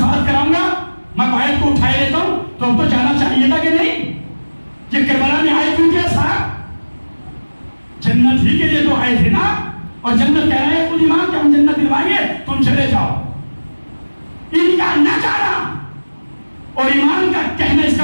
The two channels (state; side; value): inverted; both; correlation -1.00